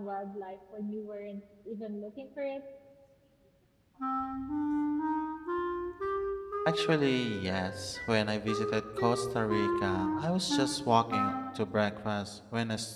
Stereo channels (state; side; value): identical; both; correlation 1.00